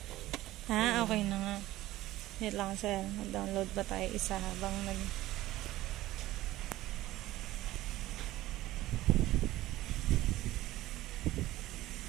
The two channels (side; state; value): left; quieter; 16.2 dB